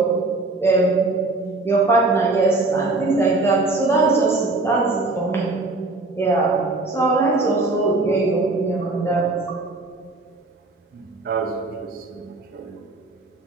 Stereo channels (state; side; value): quieter; left; 3.2 dB